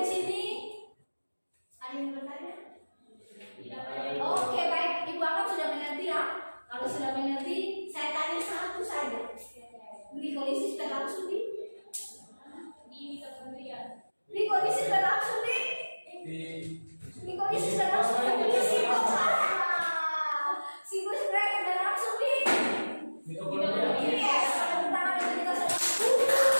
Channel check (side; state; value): both; inverted; correlation -1.00